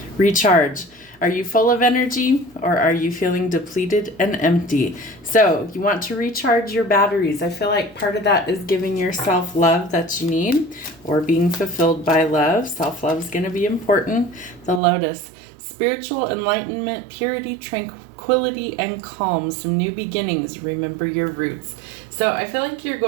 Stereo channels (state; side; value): drops out; left; at 14.8 s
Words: Recharge. Are you full of energy or are you feeling depleted and empty? So you want to recharge your batteries. I feel like part of that is giving yourself love that you need or being fulfilled by love. Self-love is going to be important. The Lotus. Spiritual enlightenment, purity, tranquility, and calm. Some new beginnings. Remember your roots. So I feel like you're